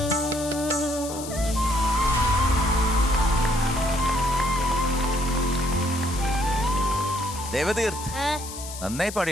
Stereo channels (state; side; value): noise; left; hiss, 11 dB below the sound